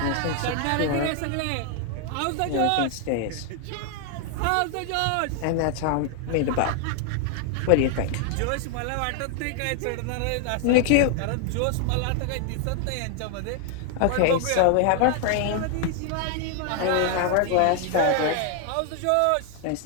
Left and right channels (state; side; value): different; both; correlation 0.00